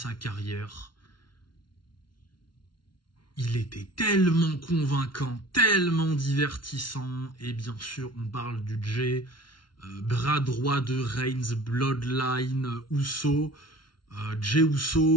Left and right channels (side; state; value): right; late; 0.72 ms